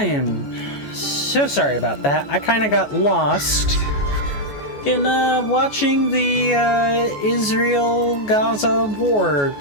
am so sorry about that. I kind of got lost in watching the Israel-Gaza war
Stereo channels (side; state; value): right; late; 14 ms